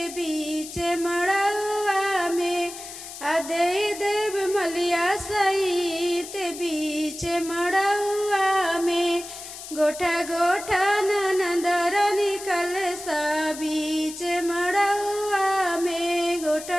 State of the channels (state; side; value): noise; left; hiss, 12 dB below the sound